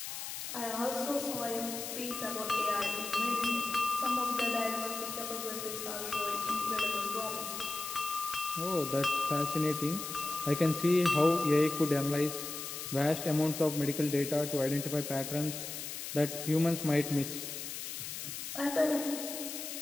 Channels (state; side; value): noise; left; hiss, 7 dB below the sound